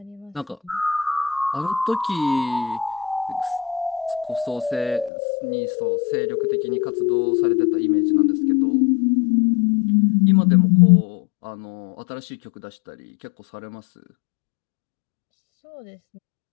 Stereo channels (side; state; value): right; drops out; at 5.1 s